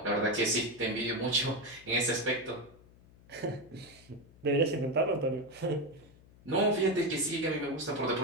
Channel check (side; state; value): left; noise; hum, 25 dB below the sound